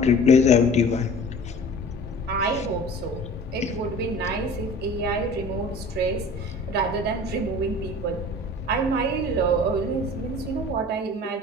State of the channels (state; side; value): normal; both; correlation 0.43